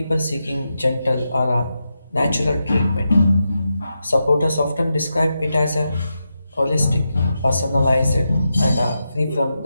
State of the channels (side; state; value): both; inverted; correlation -0.87